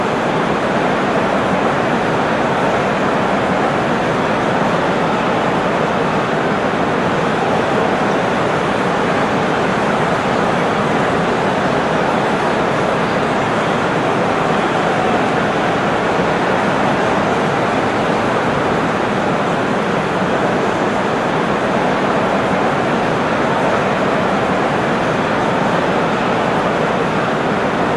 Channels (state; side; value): identical; both; correlation 1.00